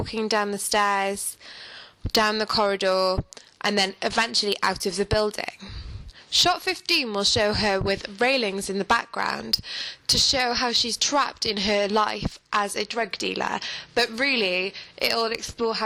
down the stairs, down the corridor, and then eventually out of the building. Shot 15 will show her with railings in the background to show how she's trapped in her life as a drug dealer, but really it will explore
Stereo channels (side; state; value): both; identical; correlation 1.00